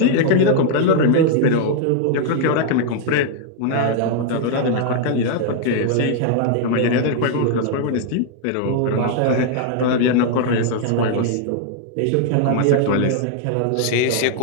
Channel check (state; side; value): different; both; correlation 0.00